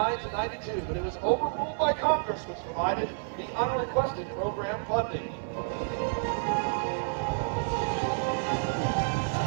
to '92, but it was overruled by Congress, which provided the unrequested program funding.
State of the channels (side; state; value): left; silent; digital silence